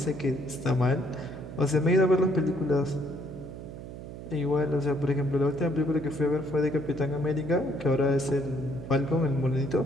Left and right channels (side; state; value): right; noise; hum, 11 dB below the sound